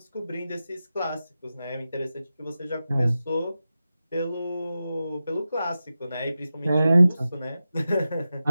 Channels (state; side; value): inverted; both; correlation -0.92